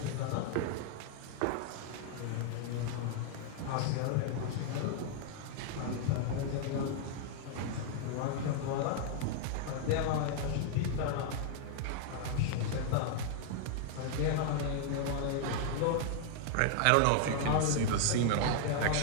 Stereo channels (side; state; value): both; different; correlation 0.00